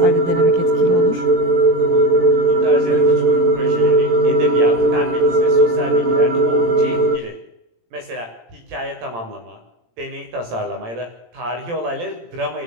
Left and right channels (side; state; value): left; late; 18 ms